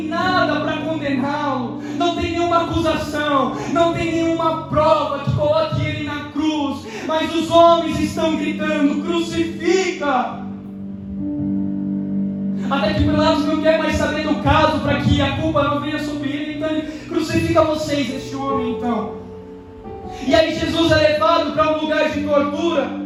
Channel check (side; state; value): both; identical; correlation 1.00